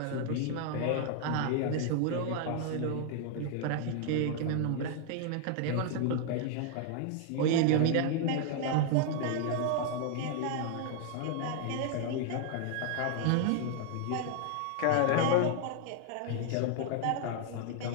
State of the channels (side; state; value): both; different; correlation 0.00